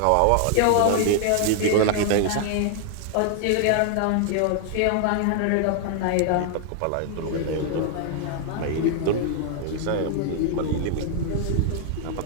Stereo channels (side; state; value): both; different; correlation 0.00